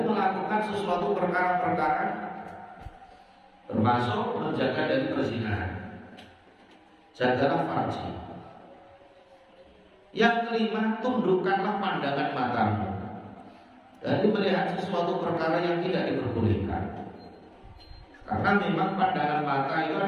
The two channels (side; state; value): both; identical; correlation 1.00